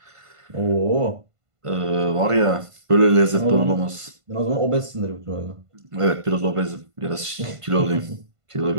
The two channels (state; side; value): late; left; 1.5 ms